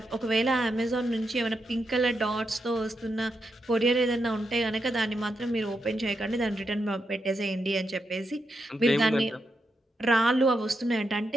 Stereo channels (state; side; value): normal; both; correlation 0.84